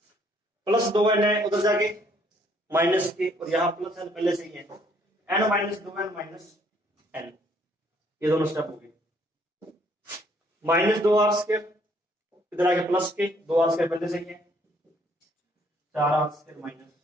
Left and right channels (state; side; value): normal; both; correlation 0.65